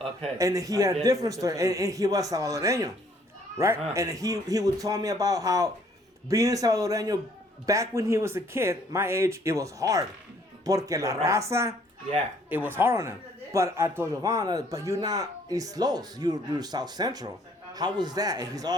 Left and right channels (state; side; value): normal; both; correlation 0.62